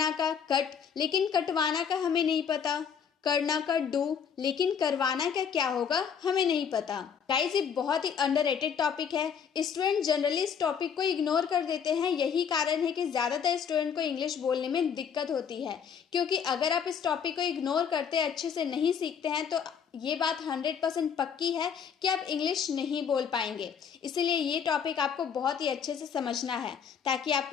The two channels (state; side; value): quieter; right; 7.3 dB